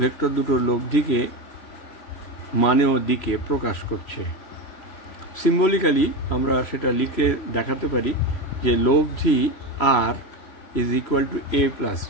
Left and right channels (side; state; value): right; late; 3.0 ms